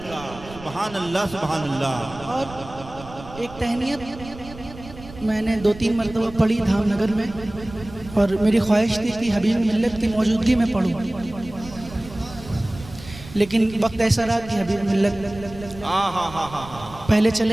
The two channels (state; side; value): noise; right; rumble, 16 dB below the sound